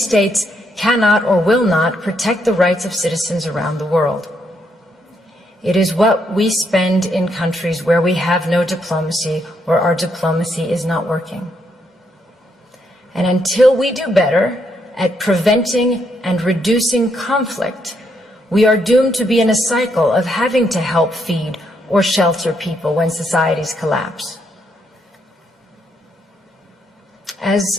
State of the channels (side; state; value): both; normal; correlation 0.76